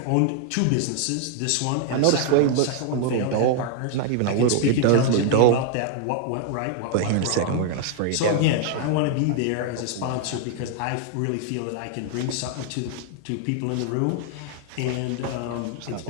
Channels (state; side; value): different; both; correlation 0.00